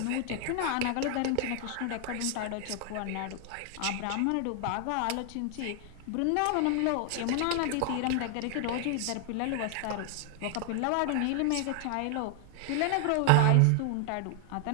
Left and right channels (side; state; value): both; different; correlation 0.00